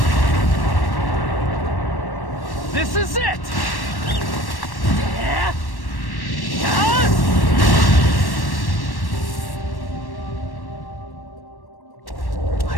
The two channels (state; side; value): late; right; 1.1 ms